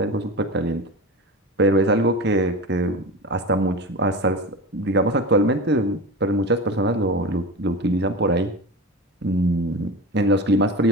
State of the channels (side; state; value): both; normal; correlation 0.28